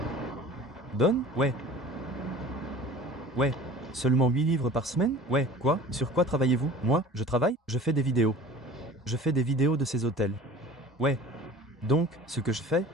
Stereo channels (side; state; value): both; normal; correlation 0.43